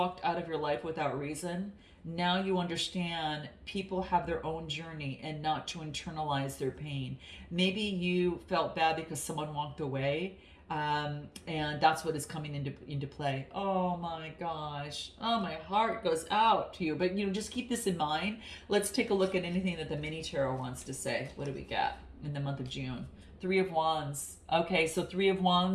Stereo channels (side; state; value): both; identical; correlation 1.00